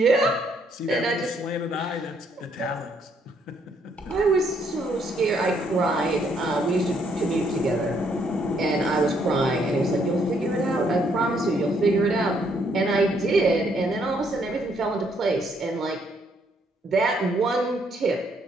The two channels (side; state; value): both; normal; correlation 0.70